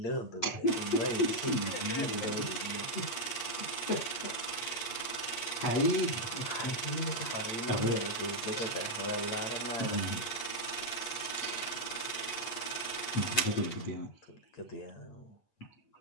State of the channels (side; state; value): right; late; 8.5 ms